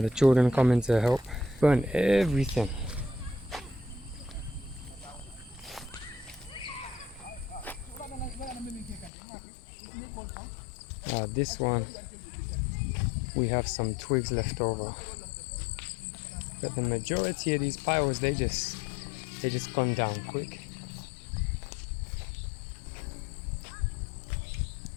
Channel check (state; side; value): drops out; right; at 9.1 s